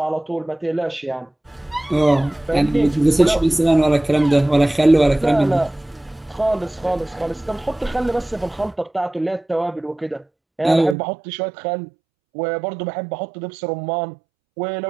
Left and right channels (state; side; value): drops out; left; at 11.0 s